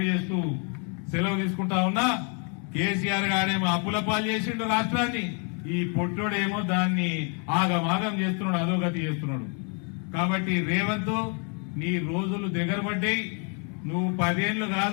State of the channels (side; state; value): right; quieter; 38.9 dB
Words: చేస్తూ సెలవు తీసుకుంటా ఉన్నా. కేసీఆర్ గారేమో అప్పుల పాలు చేసిండు రాష్ట్రాన్ని, ఈ పొట్టోడేమో దాన్ని ఆగమాగం చేస్తున్నాడు, అధోగతి చేస్తున్నాడు. కాబట్టి రేవంత్, నీ రోజులు దగ్గర పడ్డాయి. నువ్వు 10 ఏళ్లు